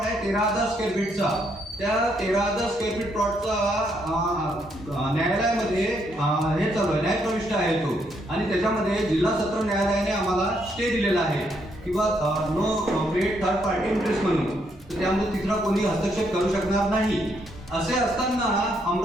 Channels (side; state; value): both; normal; correlation 0.74